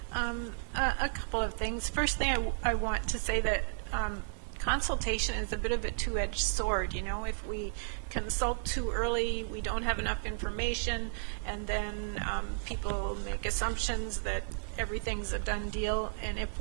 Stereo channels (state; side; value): silent; left; 55 dB below the other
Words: A couple of things. First thing I want to say that consultation is a bit of a two-edged sword. You know, if we consult too early, we don't have enough information, and then people make assumptions that everything's a done deal, and if